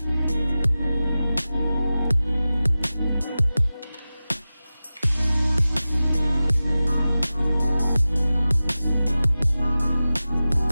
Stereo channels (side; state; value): both; inverted; correlation -0.95